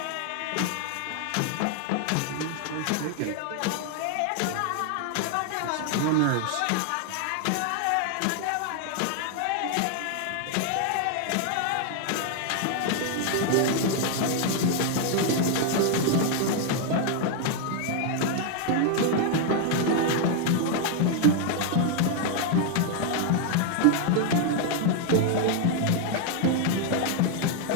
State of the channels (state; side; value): different; both; correlation 0.00